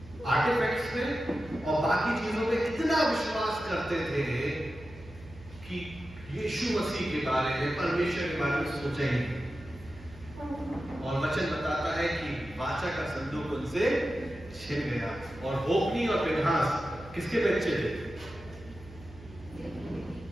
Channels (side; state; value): right; noise; hum, 19 dB below the sound